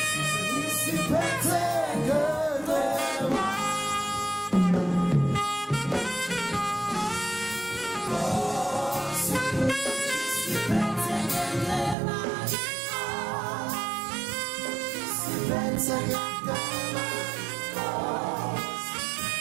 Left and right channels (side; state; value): left; drops out; at 12.0 s